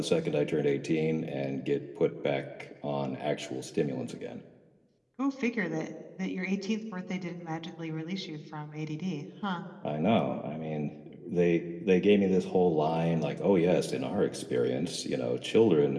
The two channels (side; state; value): both; identical; correlation 1.00